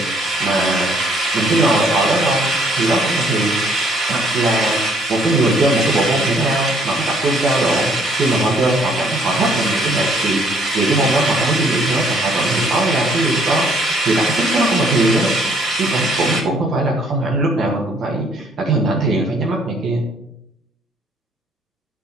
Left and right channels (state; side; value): normal; both; correlation 0.63